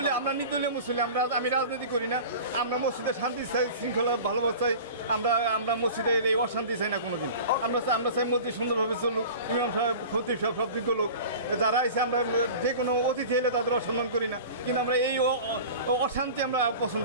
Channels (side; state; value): both; inverted; correlation -0.37